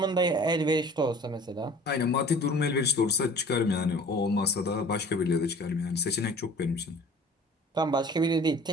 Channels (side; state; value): both; normal; correlation 0.46